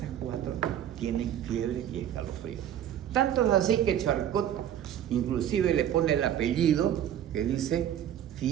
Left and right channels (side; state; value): left; quieter; 10.5 dB